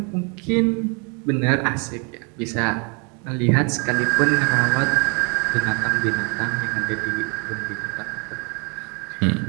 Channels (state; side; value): quieter; left; 34.1 dB